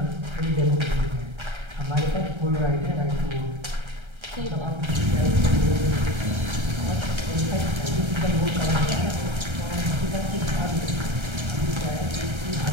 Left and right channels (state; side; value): late; left; 1.3 ms